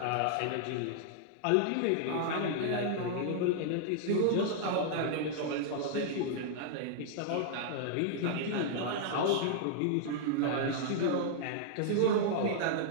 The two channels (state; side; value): different; both; correlation -0.01